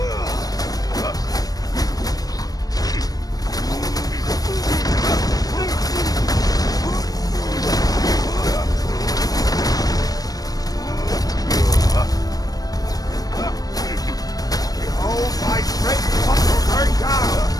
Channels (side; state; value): right; late; 0.18 ms